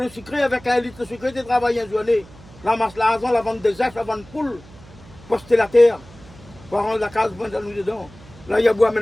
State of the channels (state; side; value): noise; right; hum, 22 dB below the sound